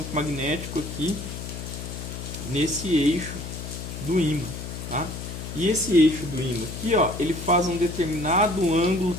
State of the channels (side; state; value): left; noise; hum, 8 dB below the sound